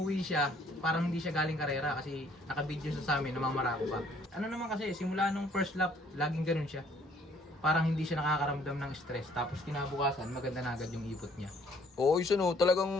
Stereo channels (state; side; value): normal; both; correlation 0.62